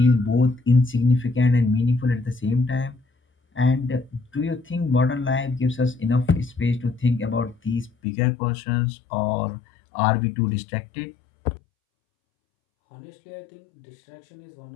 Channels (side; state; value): right; drops out; at 7.9 s